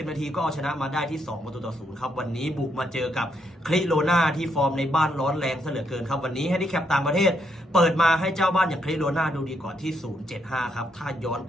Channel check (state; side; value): normal; both; correlation 0.76